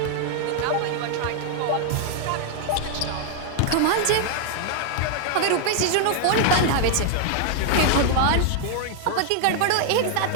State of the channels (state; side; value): different; both; correlation 0.00